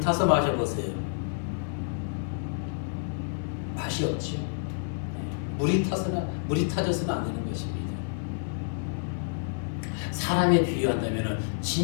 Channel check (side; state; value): right; silent; digital silence